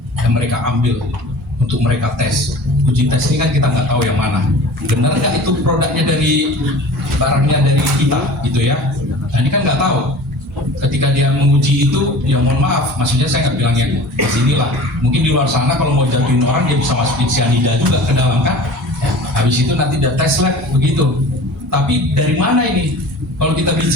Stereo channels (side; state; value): both; normal; correlation 0.40